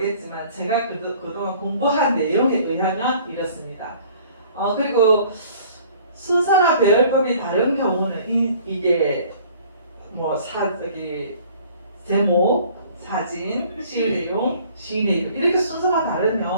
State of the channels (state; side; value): inverted; both; correlation -0.53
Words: 제가 그동안 공부한 내용에 의하면 이렇습니다. 그리고 순서나 배열법이 다른 경우는 이게 제목, 사진, 시의 내용, 시인의 이름 이렇게 순서가